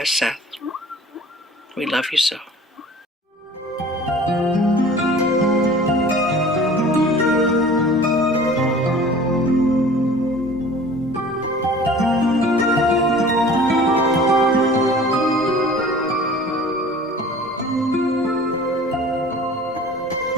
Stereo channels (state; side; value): normal; both; correlation 0.45